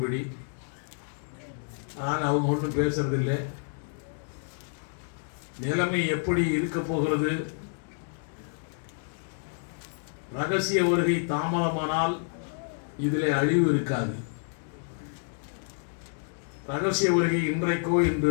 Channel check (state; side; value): silent; right; digital silence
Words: ஆனால் அவங்க ஒன்றும் பேசுறதில்லை. நிலைமை எப்படி இருக்க போகிறது? ரகசிய வருகை தாமதமானால் இதிலே அழிவு இருக்காது. ரகசிய வருகை இன்றைக்கோ